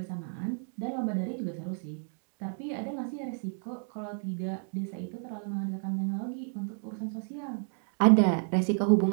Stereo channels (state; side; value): silent; left; 57 dB below the other